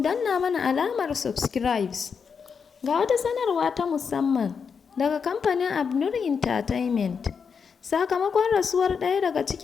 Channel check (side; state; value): right; quieter; 6.1 dB